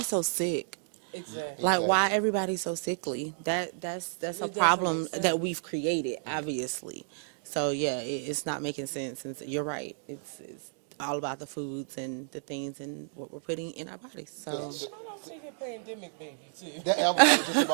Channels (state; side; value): silent; left; digital silence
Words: so sick? Exactly. Like, why everybody so sickly? That's a doesn't problem make sense. that we've created, obviously. So yeah, it's not making sense. And you're right. It's all about the foods and the things and what we're putting in our bodies. So And shout out to your pandemic baby too. That, I was just